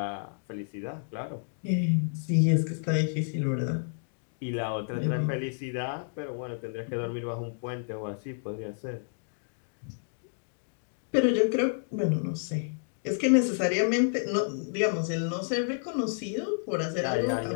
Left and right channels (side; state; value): right; silent; digital silence